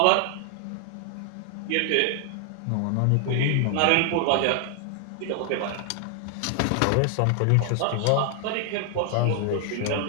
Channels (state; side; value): different; both; correlation 0.00